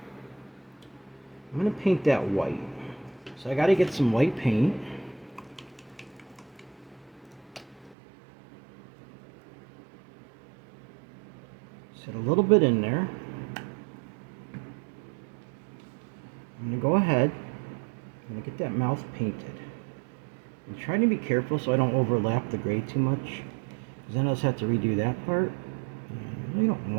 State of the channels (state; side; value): drops out; left; at 8.0 s